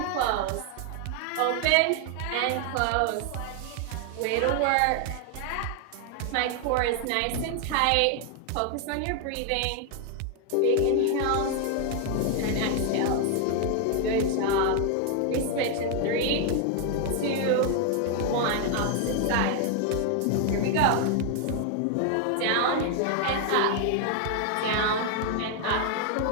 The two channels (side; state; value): both; different; correlation 0.00